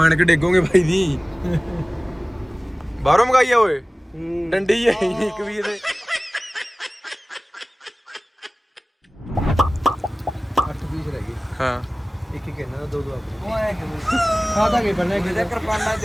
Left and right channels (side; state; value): both; normal; correlation 0.98